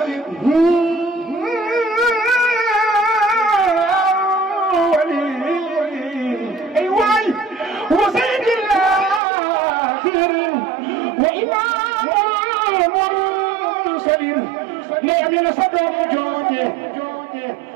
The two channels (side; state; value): left; drops out; at 9.2 s